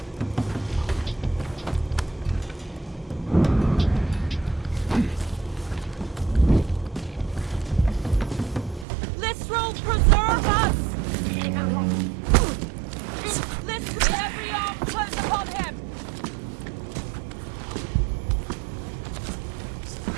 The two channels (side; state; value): left; drops out; at 8.8 s